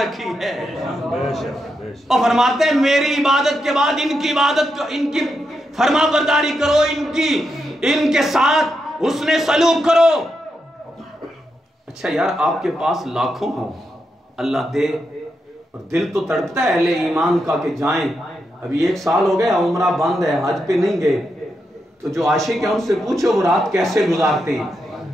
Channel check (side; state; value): both; normal; correlation 0.84